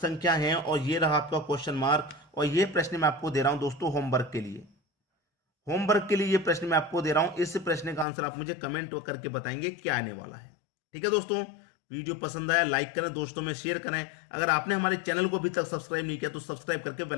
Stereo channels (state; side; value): drops out; right; at 8.1 s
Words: है, और ये रहा आपका क्वेश्चन मार्क। और ये प्रश्न मैं आपको दे रहा हूं दोस्तों होमवर्क के लिए, होमवर्क के लिए ये प्रश्न मैं आपको दे रहा हूं। इस प्रश्न का आंसर आप मुझे कमेंट करके बताएंगे क्या आने वाला है। ठीक है दोस्तों, वीडियो पसंद आया लाइक करें, दोस्तों में शेयर करें। अगर आपने हमारे चैनल को अभी तक सब्सक्राइब नहीं किया तो सब्सक्राइब करके